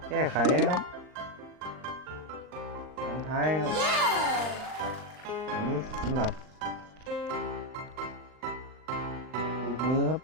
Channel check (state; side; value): late; left; 39 ms